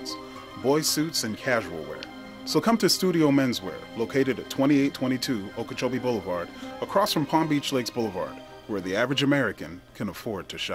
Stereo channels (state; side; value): identical; both; correlation 1.00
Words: Boys suits and casual wear. So come to Studio Menswear, located at 2822 Okeechobee Boulevard, across from Palm Beach Lakes Boulevard, where the average American can afford to